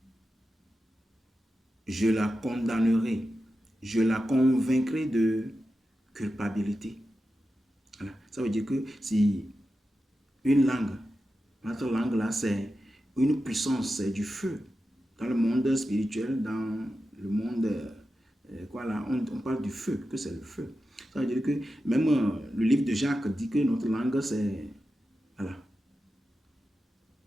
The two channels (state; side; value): normal; both; correlation 0.91